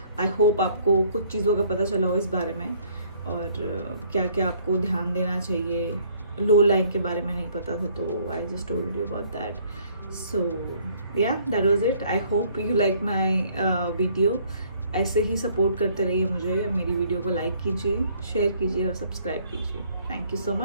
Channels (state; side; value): inverted; both; correlation -0.61